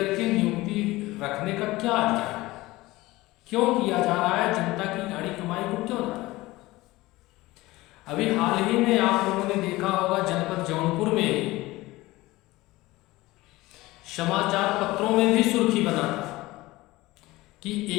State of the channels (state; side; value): quieter; right; 19.4 dB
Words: नियुक्ति रखने का क्या अधिकार है? क्यों किया जा रहा है? जनता की गाड़ी कमाई को क्यों जा रहा है? अभी हाल ही में आप लोगों ने देखा होगा, जनपद जौनपुर में समाचार पत्रों में भी सुर्खी बना था कि